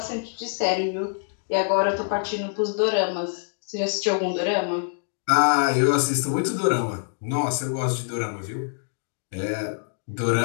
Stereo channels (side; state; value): right; silent; digital silence